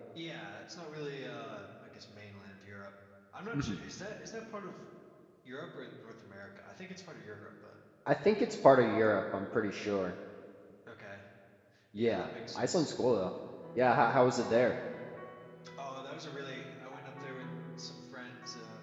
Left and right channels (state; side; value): identical; both; correlation 1.00